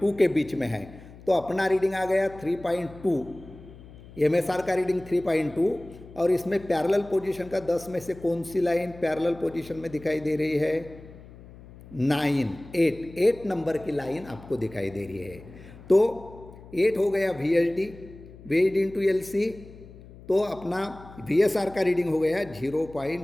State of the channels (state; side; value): noise; left; hum, 19 dB below the sound